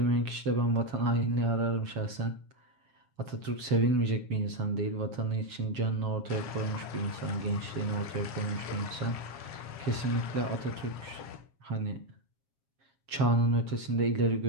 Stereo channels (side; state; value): left; late; 7.3 ms